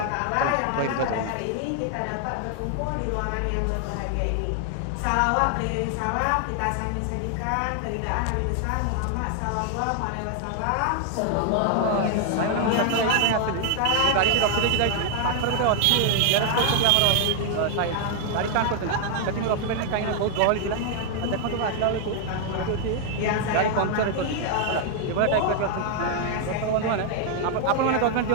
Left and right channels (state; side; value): different; both; correlation 0.00